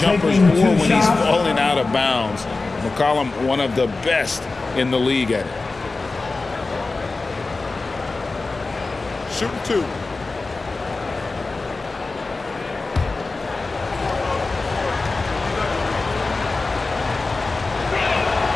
more when he's falling out of bounds. McCollum, one of the best in the league at it. Shooting 2.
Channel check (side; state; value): right; quieter; 3.6 dB